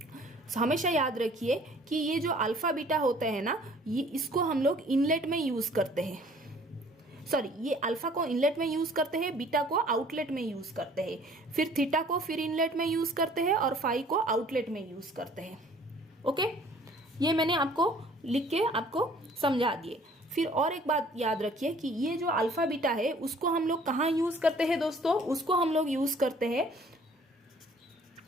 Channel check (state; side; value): normal; both; correlation 0.54